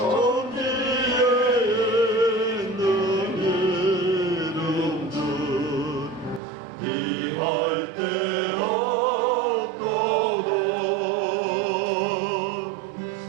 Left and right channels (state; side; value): drops out; left; at 6.4 s